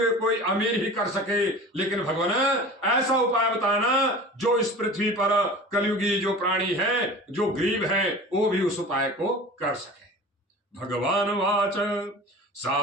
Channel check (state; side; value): normal; both; correlation 0.37